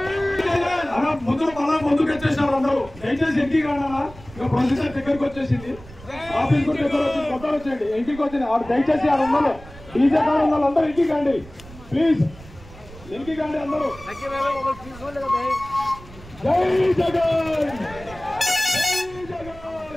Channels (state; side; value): noise; right; rumble, 19 dB below the sound